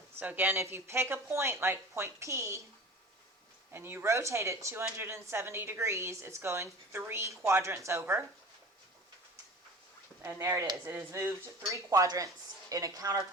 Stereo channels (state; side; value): normal; both; correlation 0.39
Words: So again, if you pick a point like point P and you rotate it 270 degrees, it's going 3 quadrants over. And there it is. It has moved 3 quadrants in a